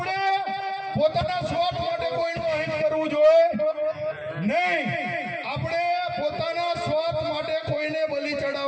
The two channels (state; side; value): identical; both; correlation 1.00